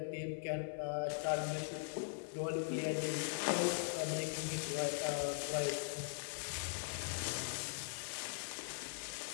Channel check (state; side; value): silent; right; 50 dB below the other